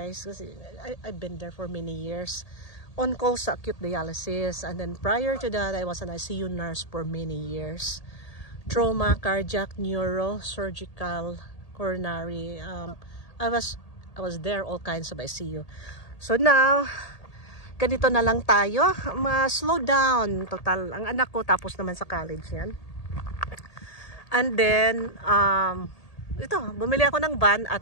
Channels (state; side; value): late; right; 1.8 ms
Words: guys. Kasi I've been there for many years. On calls sa acute dialysis. And then prior to that, I was an ICU nurse for many years. Trauma, cardiac, neuro, surgical, coronary. I was there, all kinds of ICU. So now, ganito na lang tayo. Slow down. Total, ang anak ko tapos naman sa college yan. And then, ito, bumili ako ng van